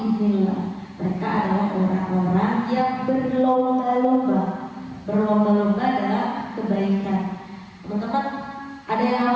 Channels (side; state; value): both; identical; correlation 1.00